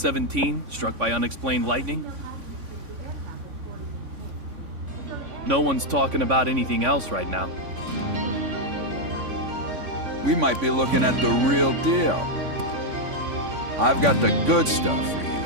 struck by unexplained lightning? No one's talking about anything else right now. We might be looking at the real deal. I've got the good stuff for you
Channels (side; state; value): left; late; 3.5 ms